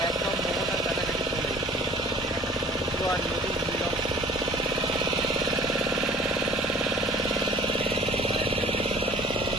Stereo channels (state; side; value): normal; both; correlation 0.50